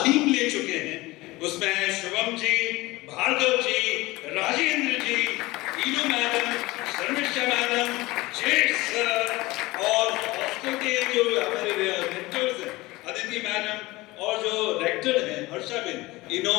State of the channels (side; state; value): right; quieter; 20.4 dB